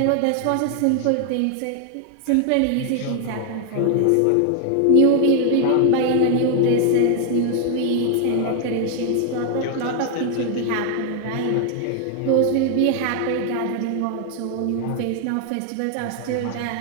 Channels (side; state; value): both; different; correlation 0.00